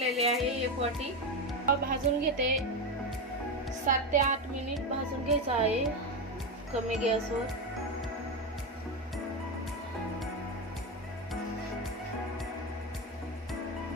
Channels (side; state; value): both; normal; correlation 0.14